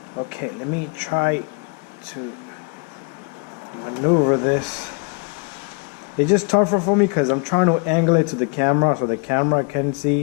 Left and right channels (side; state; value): right; quieter; 33.7 dB